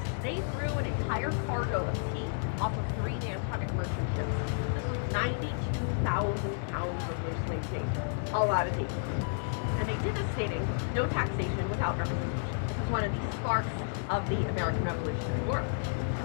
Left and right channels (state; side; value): silent; right; digital silence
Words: they threw an entire cargo of tea off of 3 Nantucket merchant ships. This was 92,000 pounds of loosely tea. A lot of tea. And they did this stating, no taxation without representation. This is one of the sparks of the American Revolutionary War.